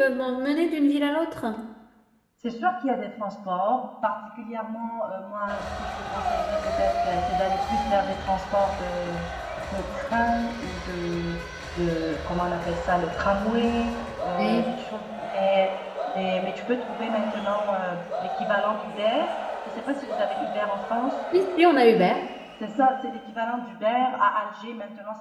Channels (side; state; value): both; identical; correlation 1.00